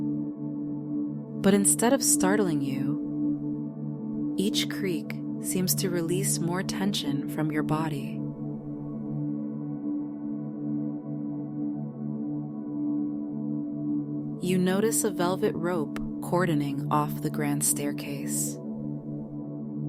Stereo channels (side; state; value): both; identical; correlation 1.00